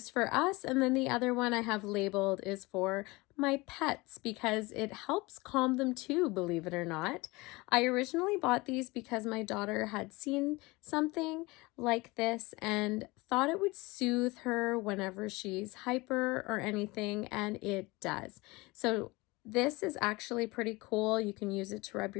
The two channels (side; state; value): right; quieter; 23.2 dB